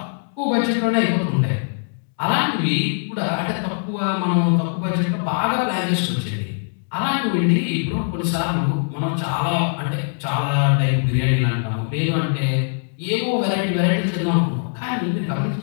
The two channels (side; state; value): right; silent; 63 dB below the other